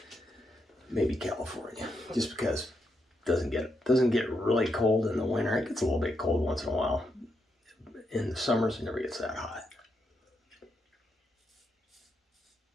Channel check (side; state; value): both; normal; correlation 0.82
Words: Maybe California, just because it doesn't get really cold in the winter. It gets a little bit cold once in a while. In the summers, it never gets that hot.